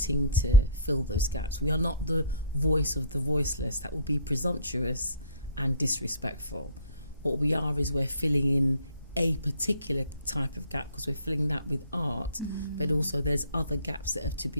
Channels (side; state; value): both; inverted; correlation -0.51